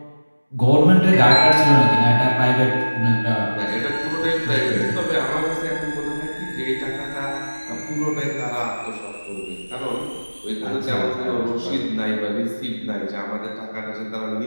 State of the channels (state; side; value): inverted; both; correlation -1.00